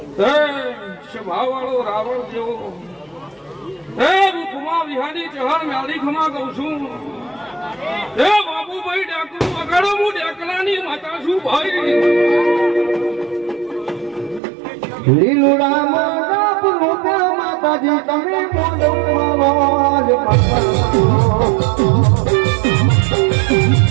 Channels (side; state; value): left; drops out; at 14.4 s